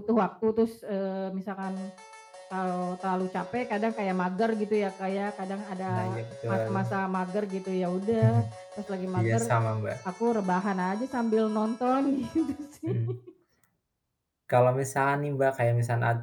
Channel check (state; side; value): identical; both; correlation 1.00